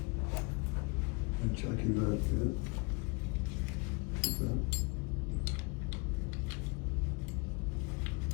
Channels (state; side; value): quieter; right; 29.8 dB